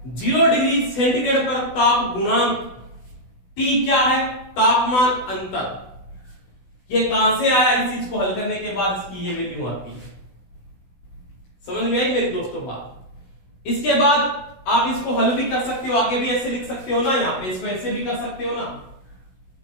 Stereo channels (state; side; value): late; right; 16 ms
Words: 0 डिग्री सेंटीग्रेड पर ताप गुणांक। T क्या है, तापमान अंतर। ये कहां से आया, इस चीज को हल करने के बाद इसकी ये वैल्यू आती है। समझ में आई मेरी दोस्तों बात। इसके बाद आप इसको हल भी कर सकते हो, आगे भी ऐसे लिख सकते हो ना, यहां पे इसको ऐसे भी कर सकते हो ना,